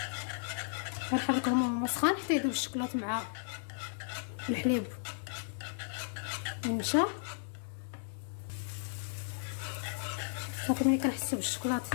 كنحركهم وهو سخون حتى يذوب الشوكولاط مع الحليب والنشا. صافي ملي كنحسو بالشوكولاط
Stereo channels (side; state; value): right; silent; digital silence